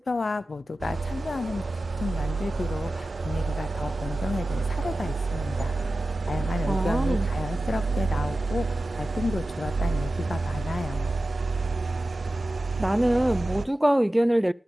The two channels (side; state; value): both; normal; correlation 0.94